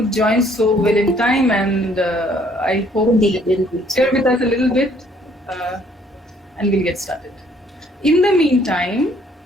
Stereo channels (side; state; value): both; normal; correlation 0.63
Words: join so well in time, and I hope Indeed. share with us a little bit, and we'll get started. In the meantime,